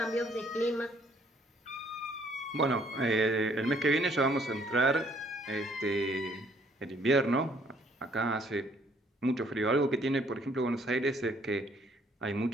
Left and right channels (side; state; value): both; normal; correlation 0.64